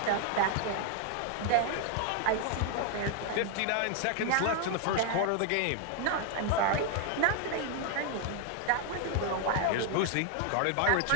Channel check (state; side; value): different; both; correlation 0.00